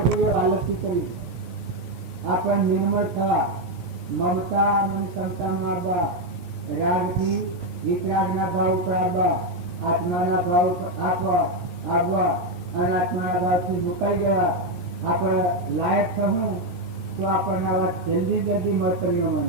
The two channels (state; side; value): late; left; 17 ms